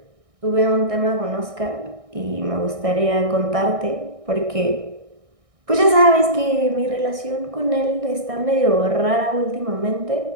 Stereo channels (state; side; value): late; left; 1.6 ms